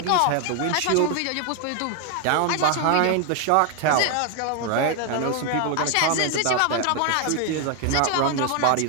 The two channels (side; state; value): both; different; correlation 0.01